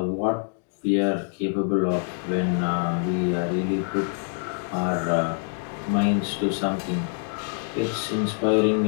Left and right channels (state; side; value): silent; right; 62 dB below the other